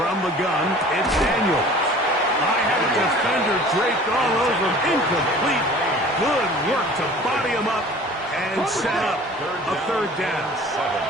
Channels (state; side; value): normal; both; correlation 0.46